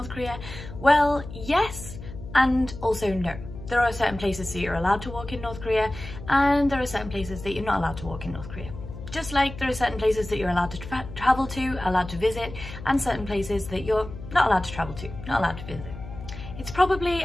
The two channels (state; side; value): noise; left; hum, 12 dB below the sound